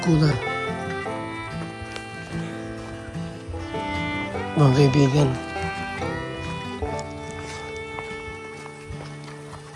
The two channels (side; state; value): both; identical; correlation 1.00